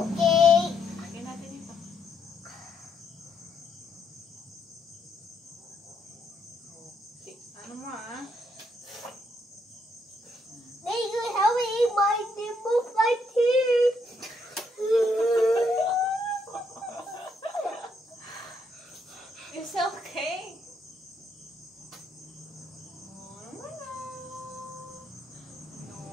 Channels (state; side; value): normal; both; correlation 0.75